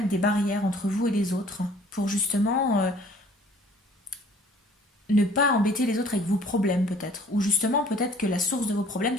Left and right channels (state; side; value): normal; both; correlation 0.54